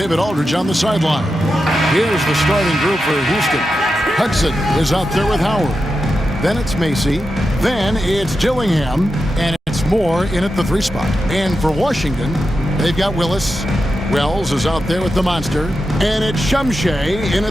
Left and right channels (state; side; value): normal; both; correlation 0.89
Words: Aldridge on the sideline. Here's the starting group for Houston. Hudson is out there with Howard. Then it's Macy. Then it's Dillingham. And it's Moore in at the 3 spot. And for Washington, they've got Willis. Wells is out there with the monster. And it's Shumshay in